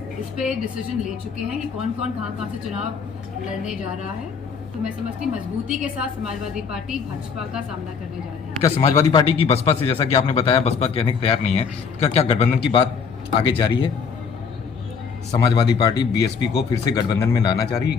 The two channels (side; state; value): right; quieter; 5.9 dB